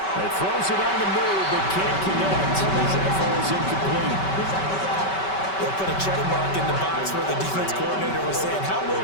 He throws it on the move, but can't connect as that falls incomplete. They'll put a check mark in the box where the defense coordinator was saying, how well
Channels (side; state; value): right; late; 5.2 ms